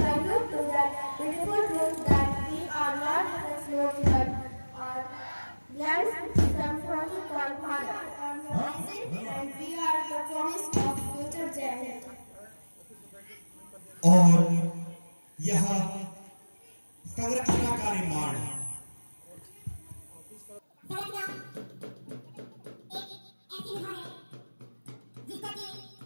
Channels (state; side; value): inverted; both; correlation -1.00